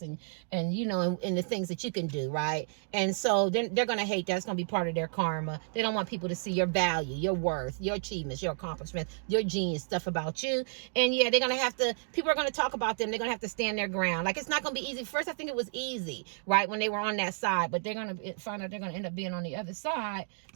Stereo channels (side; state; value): left; silent; 57 dB below the other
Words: and the things that you can do. Right. And so they're going to hate that. It's going to be part of their karma. They don't want people to see your value, your worth, your achievements, your accomplishments, your genius stuff about you. And yeah, they're going to have to, people are going to talk about them. They're going to have to stand their ground. Like, it's not going to be easy. First, I think it was easy, right, when they were on that side, but they're going to find out they're going to end up being on the other side.